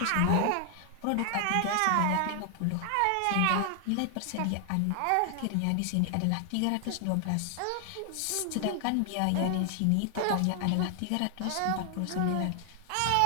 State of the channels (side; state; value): both; different; correlation 0.00